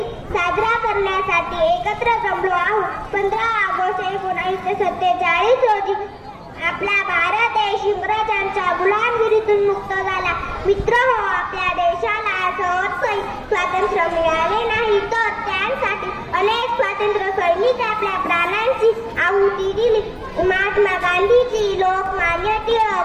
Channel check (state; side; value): identical; both; correlation 1.00